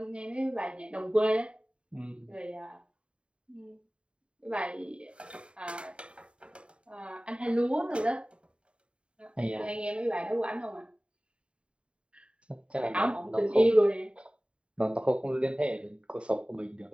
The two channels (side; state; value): left; late; 0.056 ms